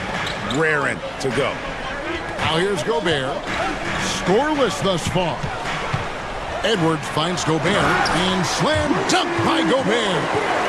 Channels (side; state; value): both; identical; correlation 1.00